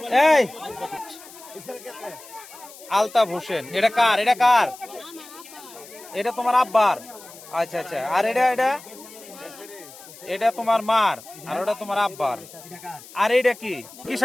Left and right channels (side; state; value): left; noise; hiss, 19 dB below the sound